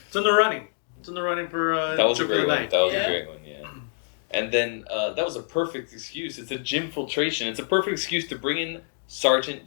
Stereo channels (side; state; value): right; silent; digital silence